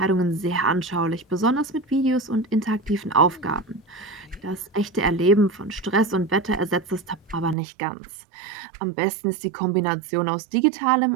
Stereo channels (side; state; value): left; drops out; at 7.6 s